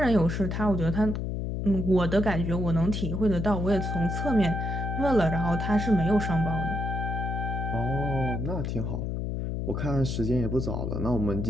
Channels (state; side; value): noise; left; hum, 2 dB below the sound